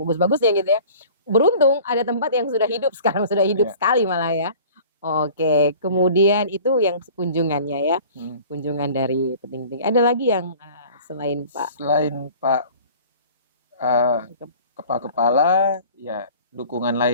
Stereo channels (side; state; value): both; inverted; correlation -0.46